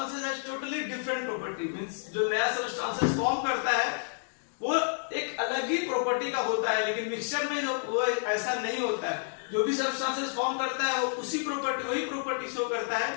has totally different property. Means जो नया सब्सटेंसेस फॉर्म करता है वो एक अलग ही प्रॉपर्टी का होता है, लेकिन मिक्सचर में जो वो ऐसा नहीं होता है। जो भी सब्सटेंसेस फॉर्म करता है वो वही प्रॉपर्टी शो करता है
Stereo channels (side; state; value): right; silent; digital silence